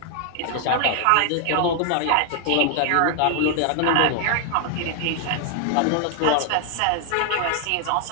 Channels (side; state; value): both; different; correlation 0.00